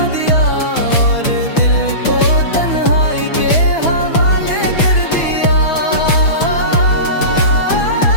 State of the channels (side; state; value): right; late; 6.1 ms